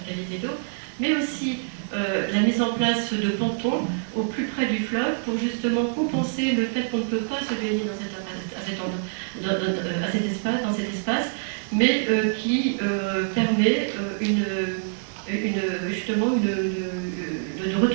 d'eau, mais aussi la mise en place de pontons au plus près du fleuve pour justement compenser le fait qu'on ne peut pas se baigner dans cet espace, mais qui permet justement de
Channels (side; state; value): left; silent; 61 dB below the other